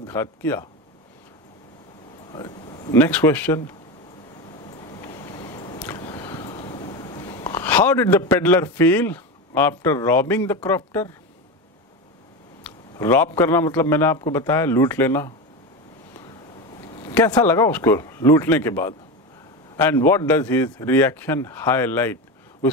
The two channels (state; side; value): normal; both; correlation 0.20